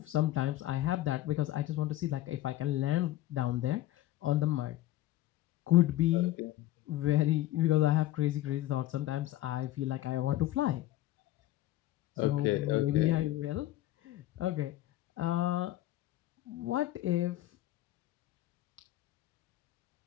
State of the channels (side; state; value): right; quieter; 14.8 dB